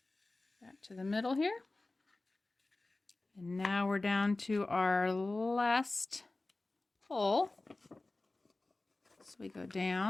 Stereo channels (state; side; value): quieter; right; 3.1 dB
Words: back to the middle here. And now we're down to our last hole. So we go